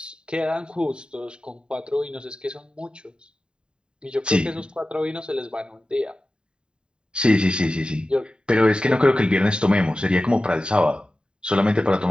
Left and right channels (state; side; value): late; left; 0.050 ms